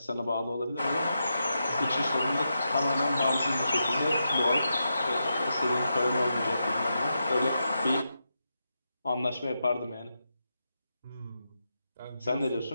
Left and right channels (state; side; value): inverted; both; correlation -0.86